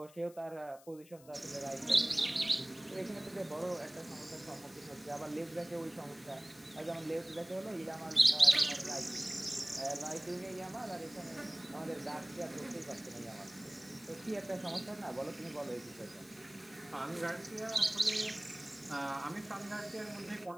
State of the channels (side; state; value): left; noise; hiss, 23 dB below the sound